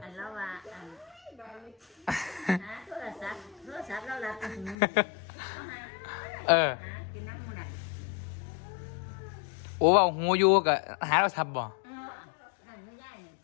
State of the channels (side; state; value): right; drops out; at 4.8 s